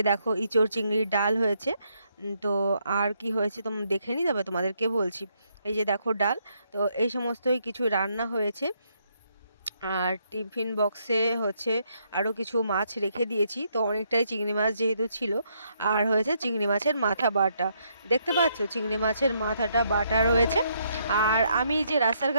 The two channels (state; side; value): inverted; both; correlation -0.74